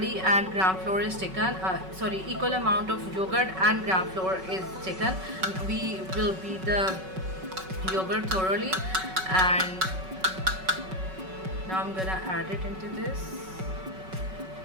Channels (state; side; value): late; left; 5.3 ms